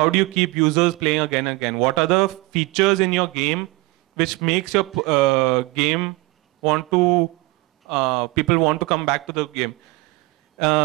do you keep users playing again and again? What are the features in your game which makes your game people want to come back to the game?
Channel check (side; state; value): left; quieter; 23.2 dB